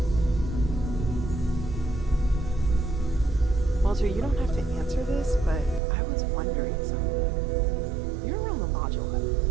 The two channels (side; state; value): left; drops out; at 5.8 s